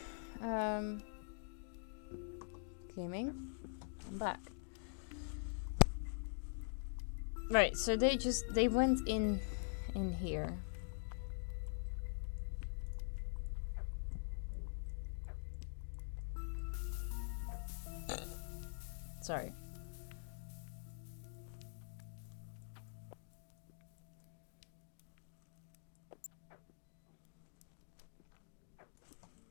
Gaming. I'm back. Right, so they went in here. Sorry.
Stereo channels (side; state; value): right; silent; digital silence